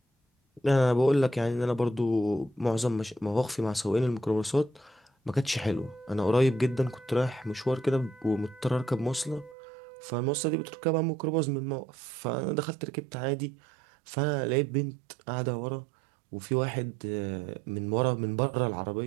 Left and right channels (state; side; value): drops out; left; at 9.6 s